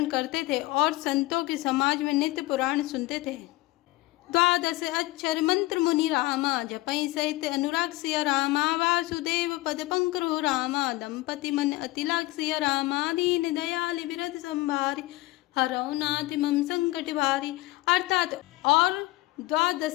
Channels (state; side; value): quieter; right; 19.6 dB